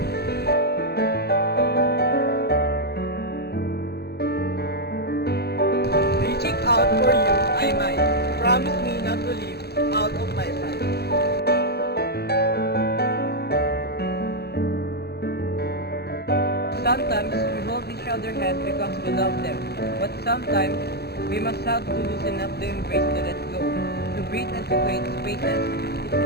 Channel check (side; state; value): right; late; 0.47 ms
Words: Reaching out for you, I might. Promise me not to leave out of my sight. Sometimes we hold each other's hand because we love them, but sometimes we must have to loosen up the embrace to let go, to breathe and to create spaces. It's